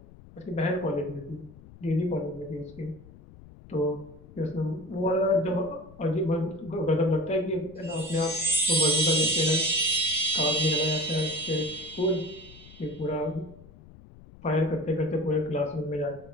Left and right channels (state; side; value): noise; left; rumble, 21 dB below the sound